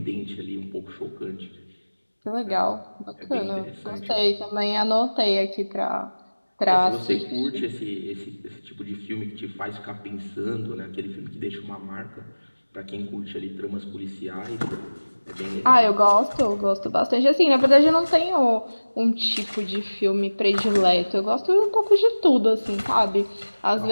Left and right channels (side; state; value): both; inverted; correlation -1.00